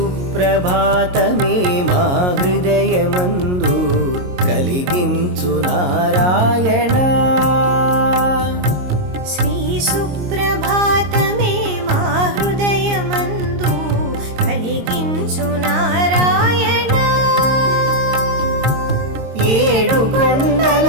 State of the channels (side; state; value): left; late; 22 ms